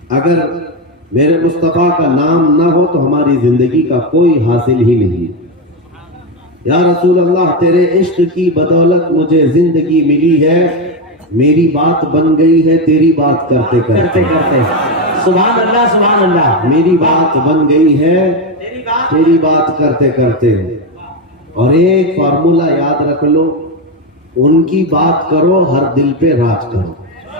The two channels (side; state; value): both; normal; correlation 0.11